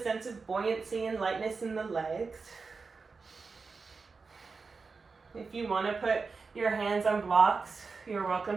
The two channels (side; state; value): left; quieter; 4.6 dB